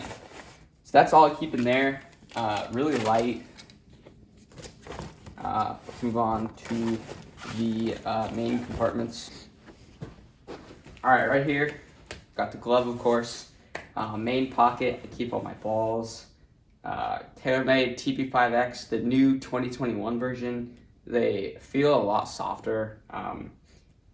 So that's all I keep in there. Really light. Let's move on to the main compartments. All right here, got the glove, of course. Main pocket, I keep all my balls. TaylorMade TP5X, the new 2021 version. They feel a lot softer.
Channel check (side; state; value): both; identical; correlation 1.00